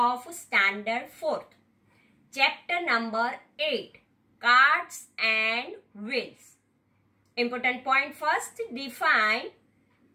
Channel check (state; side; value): identical; both; correlation 1.00